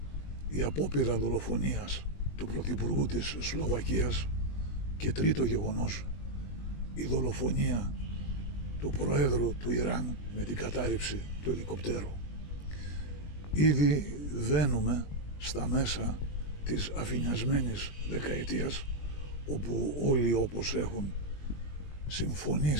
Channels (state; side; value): late; right; 20 ms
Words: η απόπειρα δολοφονίας του Πρωθυπουργού της Σλοβακίας. Και τρίτο γεγονός, η δολοφονία του Προέδρου του Ιράν με την κατάρριψη του ελικοπτέρου. Ήδη βαίνουμε στα μέσα της αφηνιασμένης δεκαετίας, όπου όλοι όπως έχουν